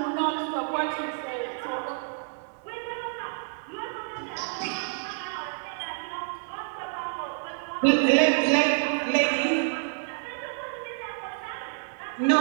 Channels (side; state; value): left; silent; digital silence